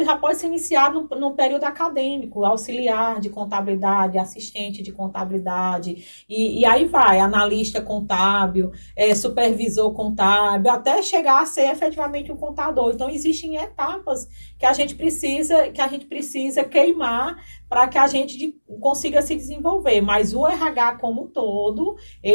já pode ser iniciado no período acadêmico, auxiliar de contabilidade, assistente de contabilidade, e aí vai, analista contábil, supervisor contábil, até chegar a ser efetivamente um contador. Então, existem etapas que a gente precisa queimar para que a gente consiga se desenvolver. Mas o RH como um todo,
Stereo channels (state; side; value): inverted; both; correlation -1.00